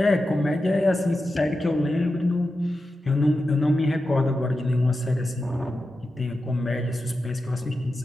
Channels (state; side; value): normal; both; correlation 0.91